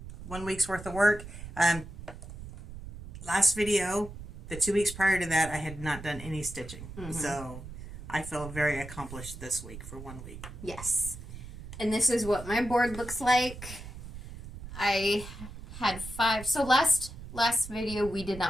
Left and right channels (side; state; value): right; noise; rumble, 12 dB below the sound